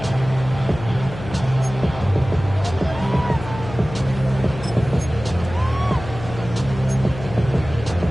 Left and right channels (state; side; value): noise; left; hum, 12 dB below the sound